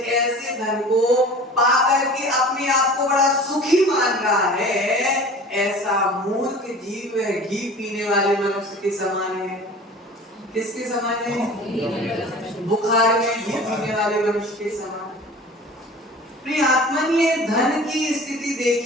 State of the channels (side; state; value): both; normal; correlation 0.41